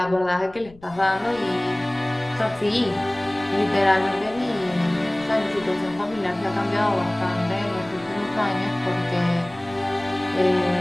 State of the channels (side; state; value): left; noise; rumble, 24 dB below the sound